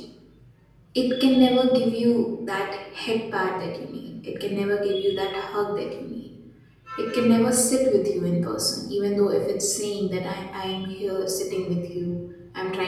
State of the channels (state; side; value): identical; both; correlation 1.00